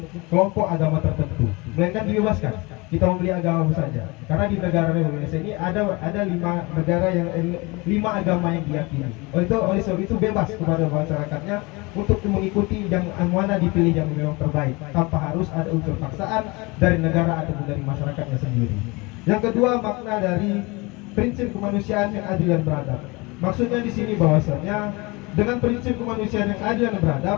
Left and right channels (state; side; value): quieter; right; 25.6 dB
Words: kelompok agama tertentu, melainkan dibebaskan kita memilih agama saja. Karena di negara Indonesia ini ada 5 negara yang 5 agama yang diyakini. Oleh sebab itu bebas kepada masyarakatnya untuk mengikuti yang mana dipilih yang memang terbaik tanpa harus ada unsur paksaan dari negara ataupun dari masyarakatnya sendiri. Yang kedua, makna dari prinsip kemanusiaan yang adil dan beradab. Maksudnya di sini bahwasanya dengan prinsip kemanusiaan yang adil dan